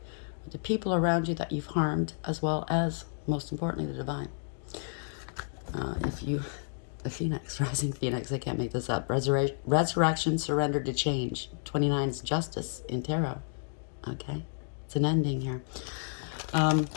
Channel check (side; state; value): right; silent; digital silence